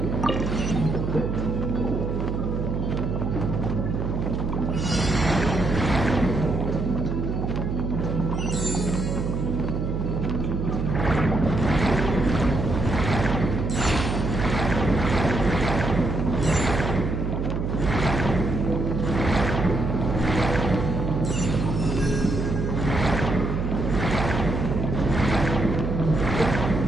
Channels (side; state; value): right; noise; hum, 2 dB below the sound